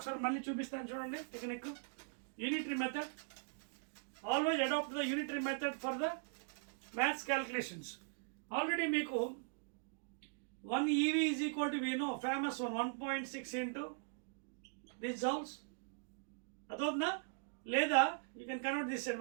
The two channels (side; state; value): left; silent; digital silence